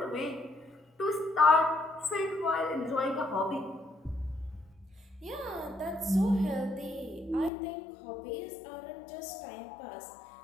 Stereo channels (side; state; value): right; drops out; at 7.5 s